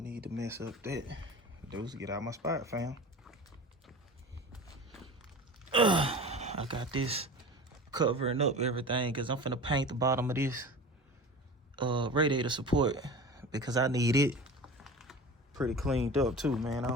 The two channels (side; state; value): both; normal; correlation 0.35